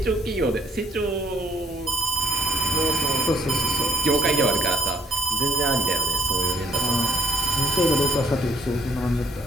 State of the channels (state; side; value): normal; both; correlation 0.64